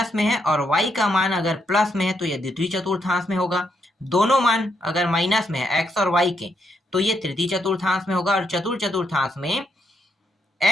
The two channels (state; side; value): normal; both; correlation 0.78